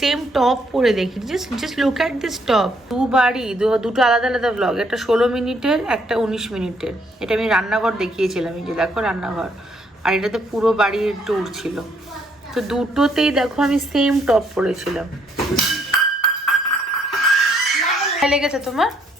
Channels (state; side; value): normal; both; correlation 0.69